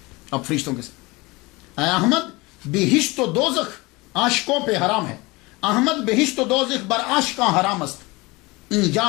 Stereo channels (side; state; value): right; quieter; 23.5 dB